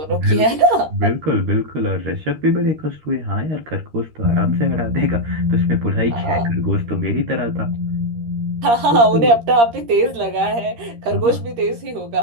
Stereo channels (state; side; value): late; left; 13 ms